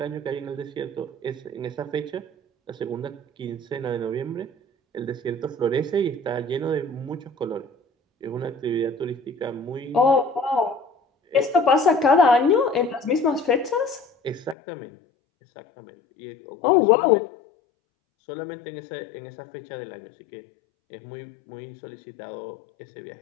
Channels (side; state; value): right; drops out; at 14.6 s